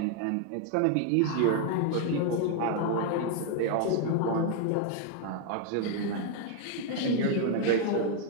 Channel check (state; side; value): different; both; correlation 0.00